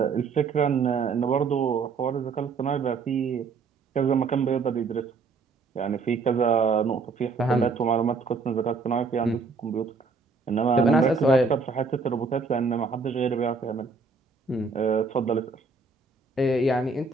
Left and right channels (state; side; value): quieter; left; 4.5 dB